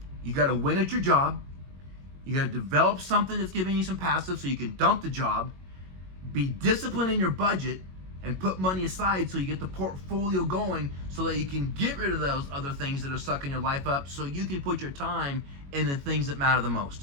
You got to win at your job. You got to develop something that's giving you some passive so you can dump the job. Be disciplined in your budget and put money aside so you get the portfolio going so that you can get rid of those other things that are sucking your life up so you can put your time in the things that matter the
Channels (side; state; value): left; late; 22 ms